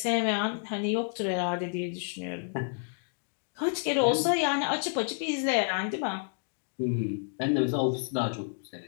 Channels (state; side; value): silent; right; digital silence